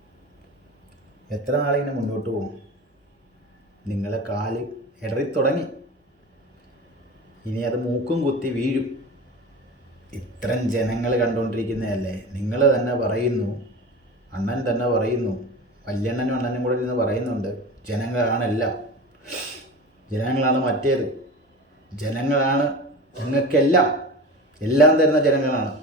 എത്ര നാളിങ്ങനെ മുന്നോട്ട് പോകും? നിങ്ങളെ കാല് ഇടറി തുടങ്ങി. ഇനി അത് മൂക്കും കുത്തി വീഴും. ഇത്രയും ജനങ്ങൾ കണ്ടുകൊണ്ടിരിക്കുന്നതല്ലേ. നിങ്ങൾ തന്നെ പറയുന്നു, അണ്ണൻ തന്നെ പറയുന്നു, വല്യണ്ണനും അണ്ണനും കൂടെ ഇരുന്ന് പറയുന്നുണ്ട്, ജനങ്ങളാണെല്ലാം, ജനങ്ങളാണ് മറ്റേത്, ജനങ്ങളാണ് ഞങ്ങൾക്കെല്ലാം, എല്ലാം തരുന്ന ജനങ്ങളാണ്.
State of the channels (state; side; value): normal; both; correlation 0.32